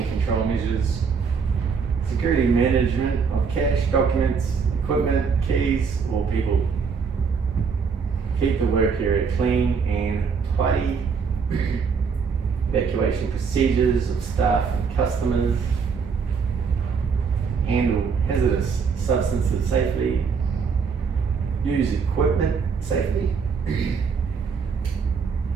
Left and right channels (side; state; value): left; quieter; 5.7 dB